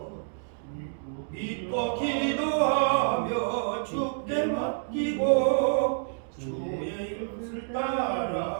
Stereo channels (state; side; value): silent; left; digital silence